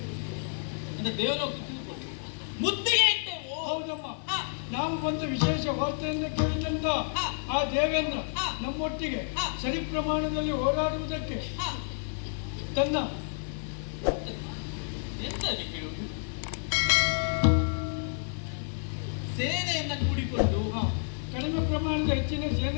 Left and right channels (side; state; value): right; silent; 58 dB below the other